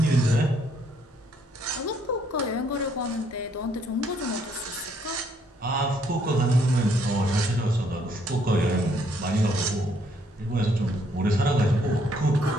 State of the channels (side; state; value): both; normal; correlation 0.69